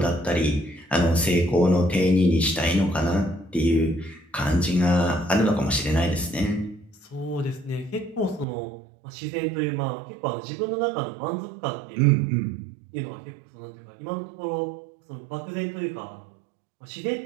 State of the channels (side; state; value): left; drops out; at 8.5 s